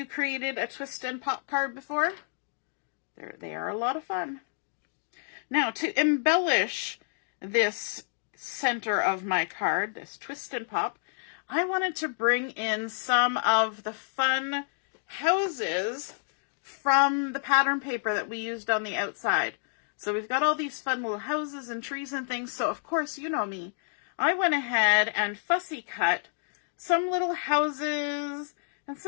created a twist and pop card before? They are a lot of fun. Now, to embellish this center of my card, this twist and pop, I wanted to bring in some of the fun houses from the pattern paper that we used on the outside. So we've got all these fun little houses and trees and things. So of course, you know me, I went ahead and fussy cut some little houses and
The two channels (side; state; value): right; silent; digital silence